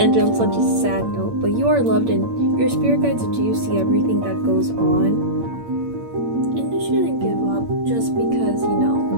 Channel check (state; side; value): late; left; 8.7 ms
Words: on such a sad note, but you are loved and your spirit guides do see everything that goes on. And you shouldn't give up just because, you